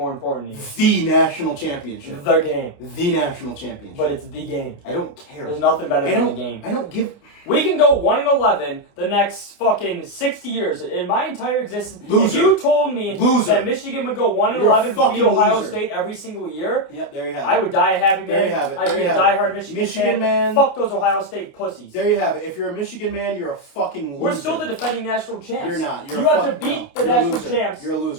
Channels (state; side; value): late; right; 29 ms